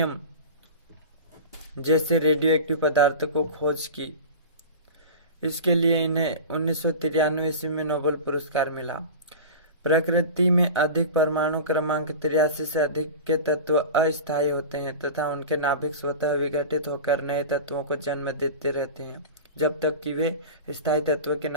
जैसे रेडियोएक्टिव पदार्थ को खोज की। इसके लिए इन्हें 1993 ईस्वी में नोबेल पुरस्कार मिला। प्रकृति में अधिक परमाणु क्रमांक 83 से अधिक के तत्व अस्थायी होते हैं तथा उनके नाभिक स्वतः विघटित होकर नए तत्वों को जन्म देते रहते हैं जब तक कि वे स्थायी तत्व के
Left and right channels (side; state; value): both; inverted; correlation -0.31